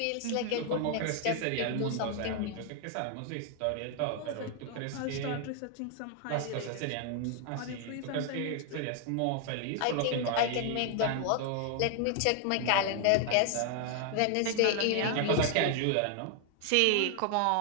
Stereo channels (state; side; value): different; both; correlation 0.00